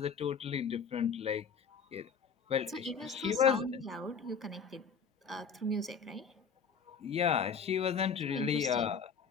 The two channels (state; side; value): quieter; right; 6.0 dB